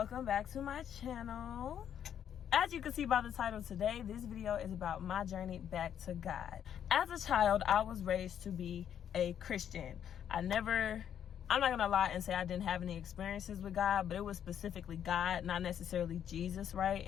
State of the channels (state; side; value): quieter; right; 9.3 dB